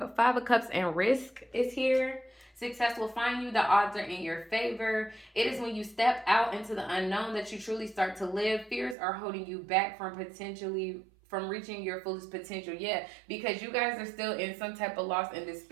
Five of Cups and risk is here. Success will find you. The odds are in your favor. It is when you step out into the unknown that you truly start to live. Fears are holding you back from reaching your fullest potential. Yeah, because you guys are still in some type of loss and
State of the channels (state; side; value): drops out; left; at 9.0 s